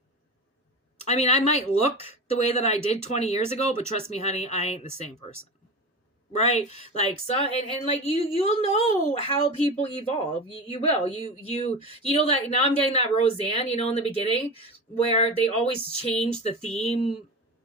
I mean, I might look the way that I did 20 years ago, but trust me, honey, I ain't the same person. Right? Like, so, and like, you'll know how people evolve. You will. You know that now I'm getting that Roseanne, in the beginning where they always change the theme,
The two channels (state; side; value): normal; both; correlation 0.27